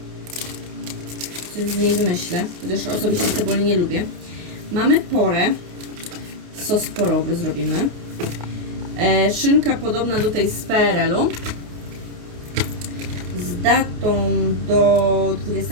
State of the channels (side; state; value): left; late; 28 ms